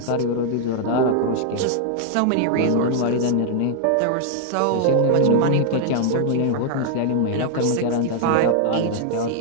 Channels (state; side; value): different; both; correlation 0.00